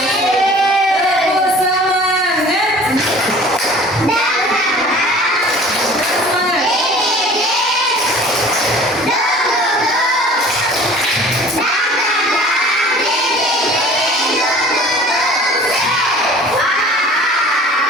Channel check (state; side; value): normal; both; correlation 0.46